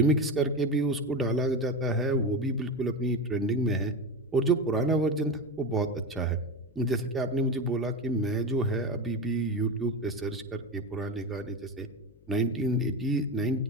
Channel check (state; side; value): noise; left; hum, 28 dB below the sound